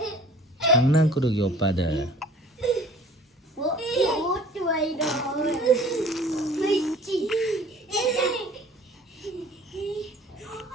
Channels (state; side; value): normal; both; correlation 0.49